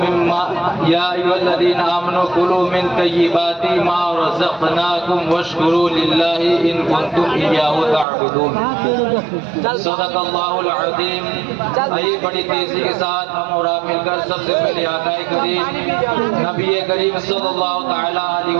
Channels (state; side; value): drops out; left; at 8.1 s